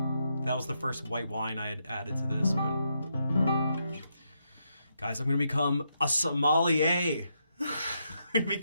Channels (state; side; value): inverted; both; correlation -0.80